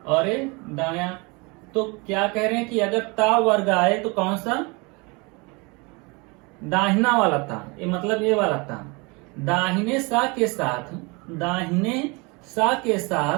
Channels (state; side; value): quieter; left; 28.1 dB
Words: और ए दाया। तो क्या कह रहे हैं कि अगर ता वर्ग आए तो कौन सा, दाहिना वाला ता, ये मतलब ये वाला ता, दाहिने सा के साथ, दाहिने सा के